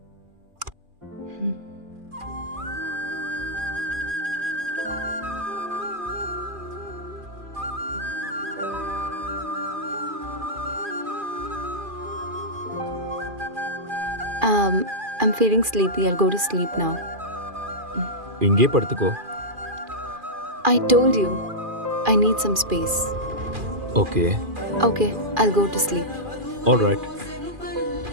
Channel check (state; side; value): late; left; 2.4 ms